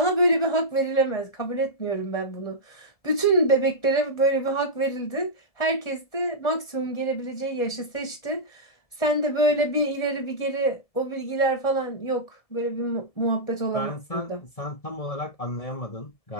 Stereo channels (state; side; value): late; right; 1.4 ms